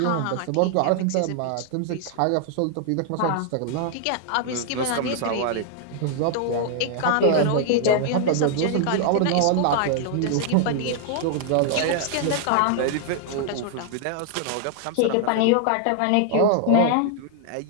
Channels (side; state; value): both; different; correlation 0.00